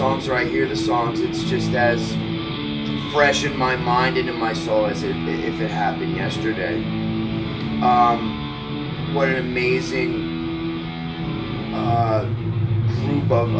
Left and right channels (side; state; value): both; identical; correlation 1.00